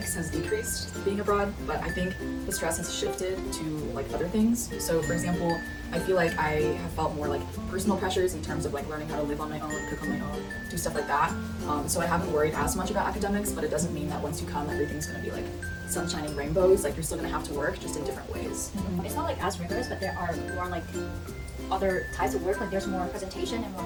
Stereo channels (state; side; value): identical; both; correlation 1.00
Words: has decreased being abroad, but I think the stress has shifted to like other things. So for example, I feel like I have felt more like personal pressures in terms of like learning how to live on my own, cook on my own, do stuff like that. So I haven't worried as much about academics, but it doesn't mean that once you come, everything's gonna be like sunshine and rainbows. Like you're still gonna have to work, just in different ways. It's not like as rigorous, but there are more like other types of work. Like there's more presentation and more